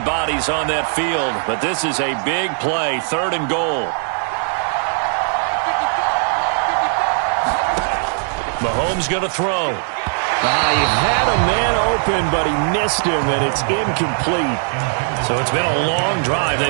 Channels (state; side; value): silent; left; 55 dB below the other